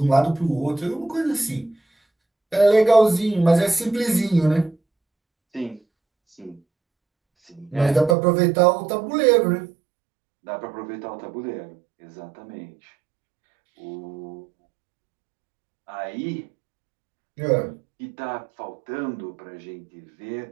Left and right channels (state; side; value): drops out; left; at 8.2 s